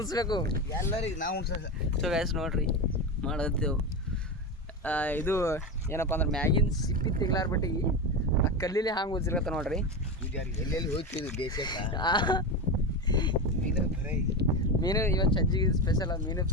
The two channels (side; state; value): both; normal; correlation 0.19